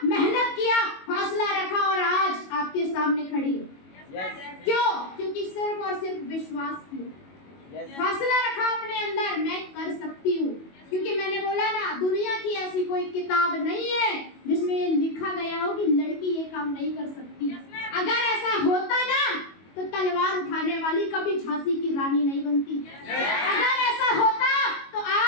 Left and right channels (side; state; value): right; late; 22 ms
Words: मेहनत किया, हौसला रखा और आज आपके सामने खड़ी है। क्यों? क्योंकि सिर्फ और सिर्फ विश्वास किया, हौसला रखा अपने अंदर, मैं कर सकती हूँ। क्योंकि मैंने बोला ना, दुनिया की ऐसी कोई किताब नहीं है जिसमें ये लिखा गया हो कि लड़की ये काम नहीं कर सकती। अगर ऐसा होता ना तो तलवार उठाने वाली कभी झांसी की रानी नहीं बनती। अगर ऐसा होता तो